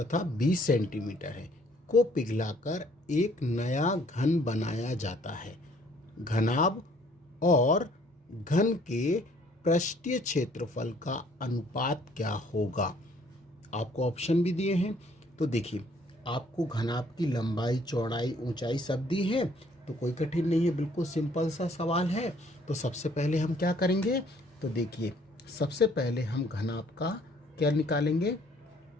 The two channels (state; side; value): normal; both; correlation 0.61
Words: 20 सेंटीमीटर है को पिघलाकर एक नया घन बनाया जाता है। घनाभ और घन के पृष्ठीय क्षेत्रफल का अनुपात क्या होगा। आपको ऑप्शन भी दिए हैं। तो देखिए, आपको घनाभ की लंबाई, चौड़ाई, ऊंचाई सब दी है, तो कोई कठिन नहीं है, बिल्कुल सिंपल सा सवाल है। तो सबसे पहले हम क्या करेंगे, तो देखिए सबसे पहले हम घनाभ का क्या निकालेंगे,